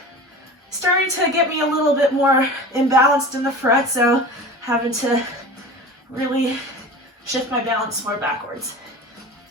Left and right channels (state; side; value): normal; both; correlation 0.35